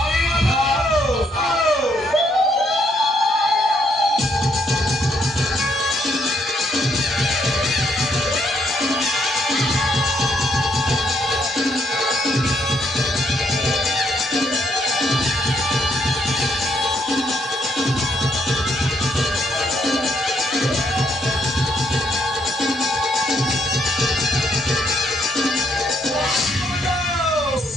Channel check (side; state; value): both; normal; correlation 0.72